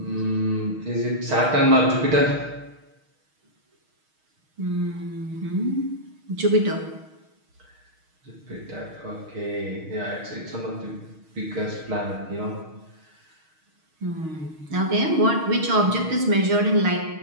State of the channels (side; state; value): left; late; 6.4 ms